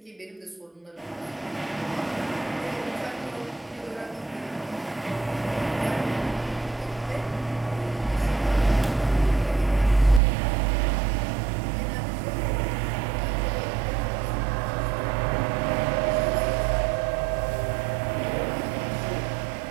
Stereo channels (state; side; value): drops out; left; at 10.2 s